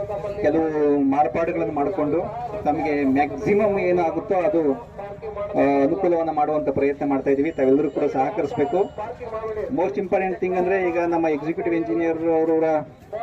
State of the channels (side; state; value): both; identical; correlation 1.00